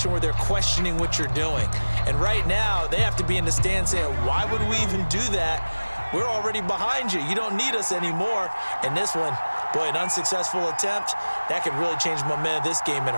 where they're questioning what you're doing. And right now, they have to be in the stand saying, why would we even do that? We're already behind you. You don't need us anymore. And this one, boy, an unsuccessful attempt, that could really change the momentum of this game in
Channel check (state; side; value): inverted; both; correlation -1.00